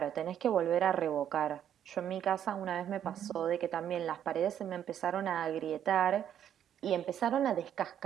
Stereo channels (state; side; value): quieter; left; 9.8 dB